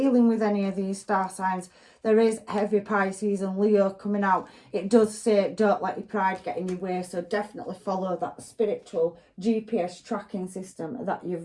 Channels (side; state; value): both; identical; correlation 1.00